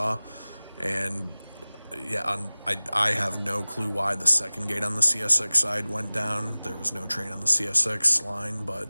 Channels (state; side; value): inverted; both; correlation -0.99